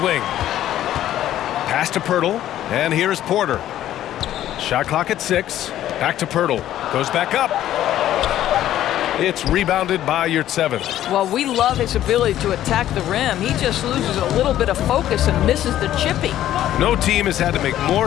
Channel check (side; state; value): right; quieter; 12.5 dB